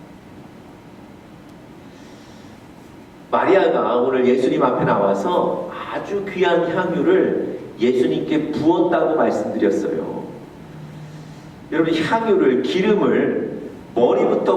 마리아가 오늘 예수님 앞에 나와서 아주 귀한 향유를 예수님께 부었다고 말씀드렸어요. 여러분, 향유를, 기름을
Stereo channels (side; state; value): both; identical; correlation 1.00